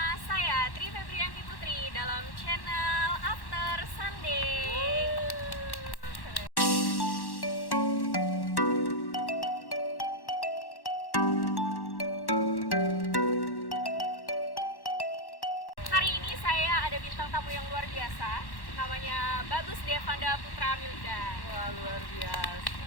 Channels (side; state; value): right; late; 1.1 ms